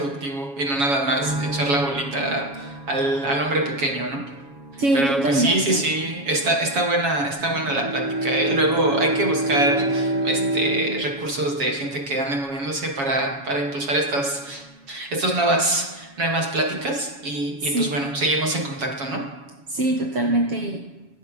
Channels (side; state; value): left; late; 7.2 ms